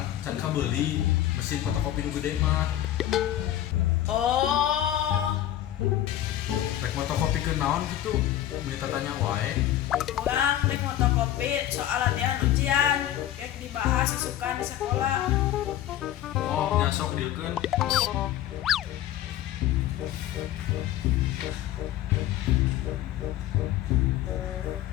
can ka beli mesin fotokopi nu gede mah. Oh, Rek fotokopi ke naon gitu. Minta tanya wae. orang rek fotokopi soal latihan ujian, kayak dibahas isukan di sekolah. Oh, nyasok dieukeun.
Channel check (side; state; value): right; quieter; 12.5 dB